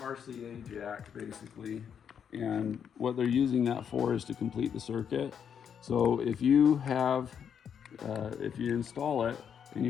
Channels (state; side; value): quieter; right; 7.9 dB